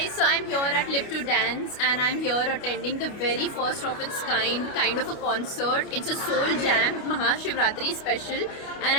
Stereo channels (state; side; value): late; right; 29 ms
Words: so I'm here at Live to Dance and I'm here attending the very first of its kind of a concert. It's a Soul Jam Mahashivratri special and